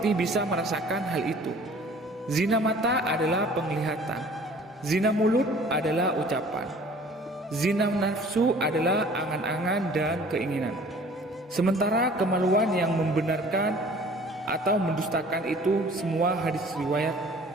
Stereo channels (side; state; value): both; normal; correlation 0.50